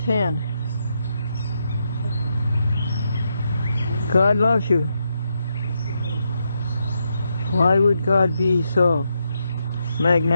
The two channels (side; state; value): both; inverted; correlation -0.82